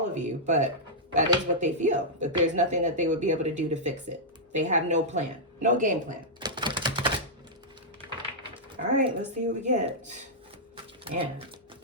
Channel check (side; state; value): both; normal; correlation -0.09